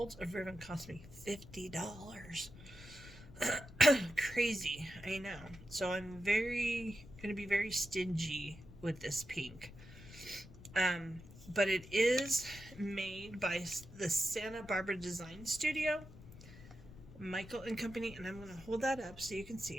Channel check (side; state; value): left; noise; rumble, 17 dB below the sound